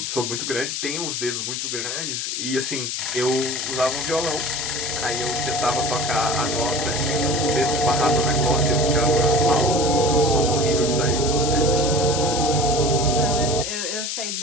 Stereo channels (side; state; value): left; noise; hiss, 3 dB below the sound